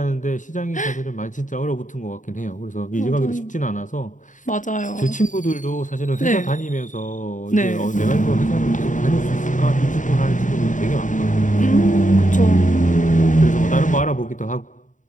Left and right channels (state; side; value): late; right; 0.37 ms